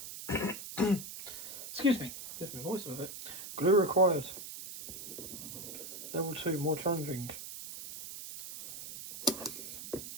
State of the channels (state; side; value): noise; right; hiss, 10 dB below the sound